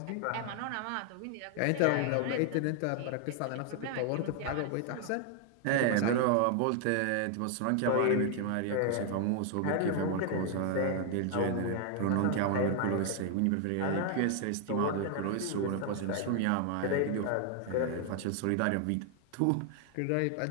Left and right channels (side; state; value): both; different; correlation 0.00